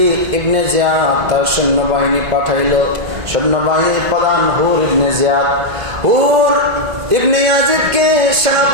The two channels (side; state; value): left; late; 2.1 ms